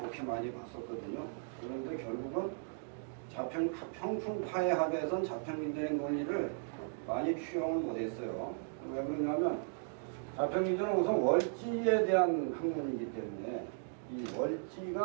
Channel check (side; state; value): left; silent; digital silence